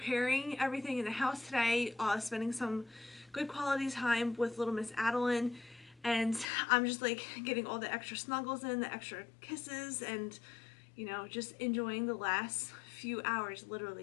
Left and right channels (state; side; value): drops out; right; at 6.5 s